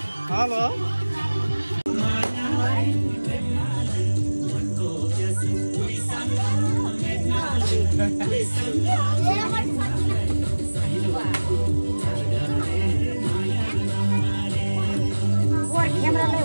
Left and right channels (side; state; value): both; inverted; correlation -1.00